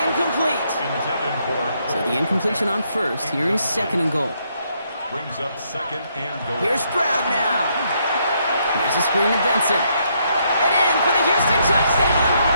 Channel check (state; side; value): inverted; both; correlation -0.74